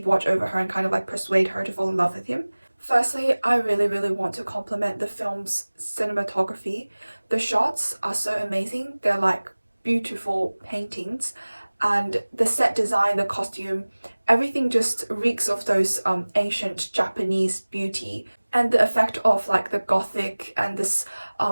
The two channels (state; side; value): inverted; both; correlation -1.00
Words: watch over her and kind of like persuade her to fall in love with him. Firstly, I really want to compliment the film's cinematography. The shots are so amazing. They're like beautiful paintings, and the set design, the costume, everything just reeks of those ancient Japanese beauty, and the effect of like the gothic and this